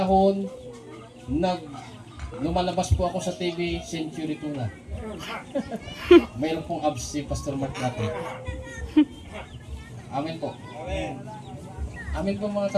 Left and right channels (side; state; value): both; identical; correlation 1.00